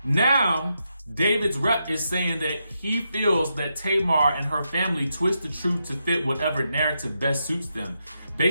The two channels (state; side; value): inverted; both; correlation -0.84